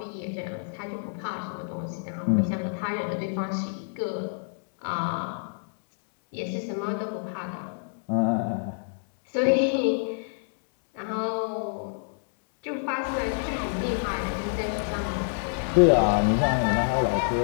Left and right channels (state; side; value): silent; right; digital silence